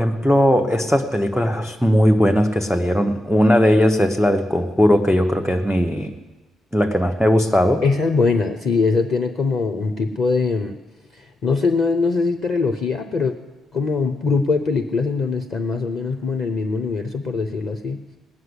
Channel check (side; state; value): both; normal; correlation 0.87